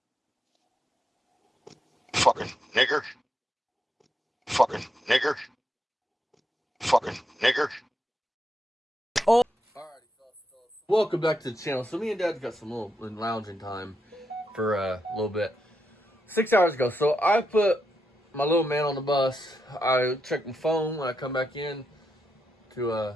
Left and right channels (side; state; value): both; normal; correlation 0.83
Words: Fucking nigger. Fucking nigger. Fucking nigger. Welcome back to the channel. So me and Dad got some little lounging time for a little bit. 6 hours ago. So I put my little man on the bus. I checked my phone when I come back in to